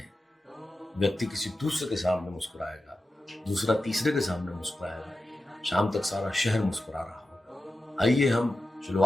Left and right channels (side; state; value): both; normal; correlation 0.92